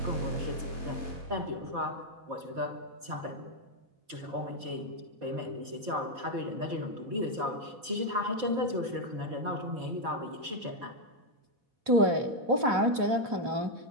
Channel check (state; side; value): late; left; 4.5 ms